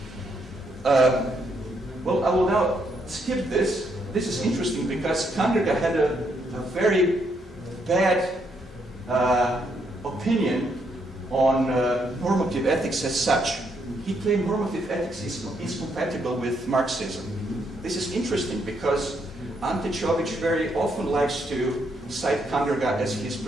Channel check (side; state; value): both; normal; correlation 0.75